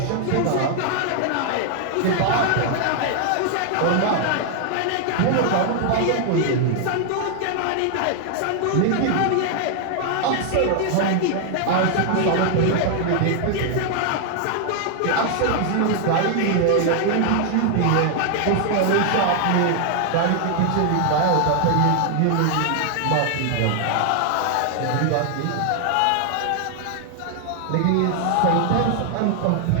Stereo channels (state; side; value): different; both; correlation 0.00